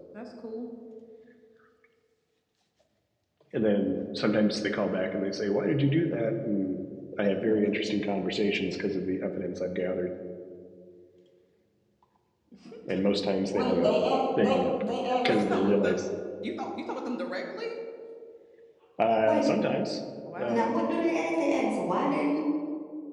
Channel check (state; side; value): identical; both; correlation 1.00